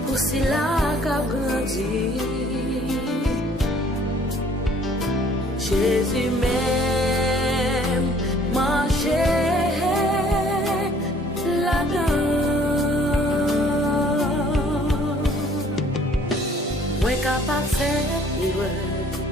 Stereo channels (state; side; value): normal; both; correlation 0.57